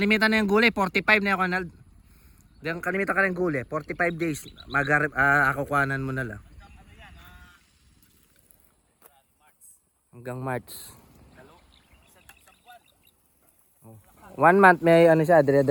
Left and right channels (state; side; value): identical; both; correlation 1.00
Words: na yung gulay 45 na yan, Ronald. Diyan kalimitan ka ng gulay 45 days akukuhanan mo na lang. Hanggang March. 1 month may siya,